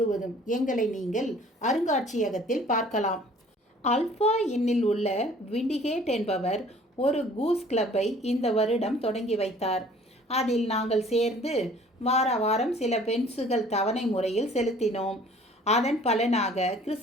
எங்களை நீங்கள் அருங்காட்சியகத்தில் பார்க்கலாம். ஆல்ஃபா இன்னில் உள்ள விண்டிகேட் என்பவர் ஒரு கூஸ் கிளப்பை இந்த வருடம் தொடங்கி வைத்தார். அதில் நாங்கள் சேர்ந்து வார வாரம் சில பென்சுகள் தவணை முறையில் செலுத்தினோம். அதன் பலனாக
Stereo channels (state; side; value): normal; both; correlation 0.53